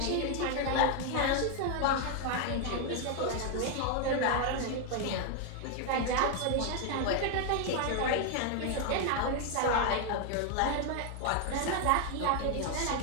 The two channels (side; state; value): both; different; correlation 0.01